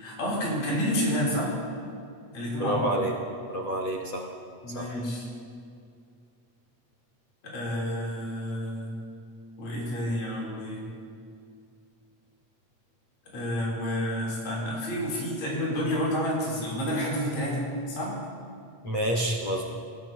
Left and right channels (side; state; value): right; late; 8.2 ms